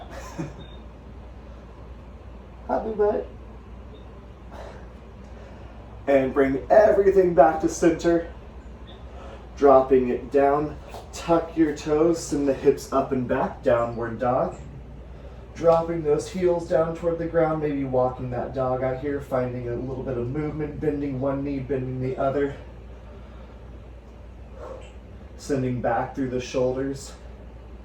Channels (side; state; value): both; identical; correlation 1.00